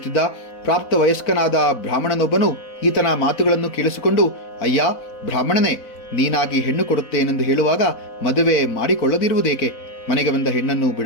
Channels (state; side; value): late; right; 4.1 ms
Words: ಪ್ರಾಪ್ತ ವಯಸ್ಕನಾದ ಬ್ರಾಹ್ಮಣನೊಬ್ಬನು ಈತನ ಮಾತುಗಳನ್ನು ಕೇಳಿಸಿಕೊಂಡು, ಅಯ್ಯ ಬ್ರಾಹ್ಮಣನೇ, ನೀನಾಗಿ ಹೆಣ್ಣು ಕೊಡುತ್ತೇನೆಂದು ಹೇಳುವಾಗ ಮದುವೆ ಮಾಡಿಕೊಳ್ಳದಿರುವುದೇಕೆ? ಮನೆಗೆ ಬಂದ ಹೆಣ್ಣನ್ನು